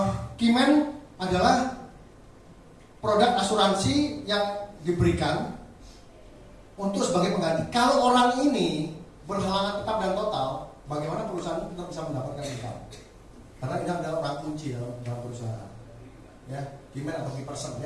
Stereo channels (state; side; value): identical; both; correlation 1.00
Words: key man adalah produk asuransi yang diberikan untuk sebagai pengganti. Kalau orang ini berhalangan tetap dan total, bagaimana perusahaan itu tetap bisa mendapatkan income? Karena ini adalah orang kunci dalam perusahaan. Ya, key man atau key person